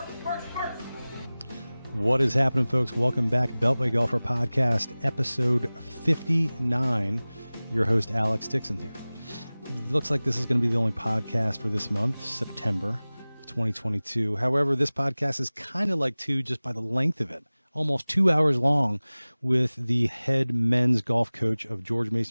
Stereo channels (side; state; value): both; inverted; correlation -0.99